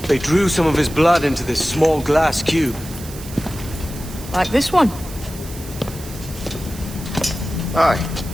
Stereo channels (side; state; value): right; noise; hiss, 15 dB below the sound